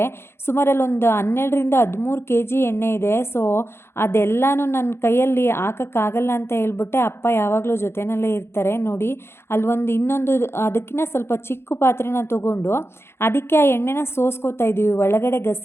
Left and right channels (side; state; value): right; late; 0.12 ms